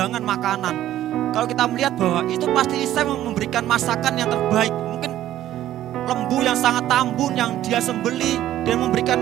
makanan. Kalau kita melihat bahwa itu pasti Isai memberikan masakan yang terbaik. Mungkin lembu yang sangat tambun yang dia sembeli, dan memberikan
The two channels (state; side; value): quieter; left; 13.0 dB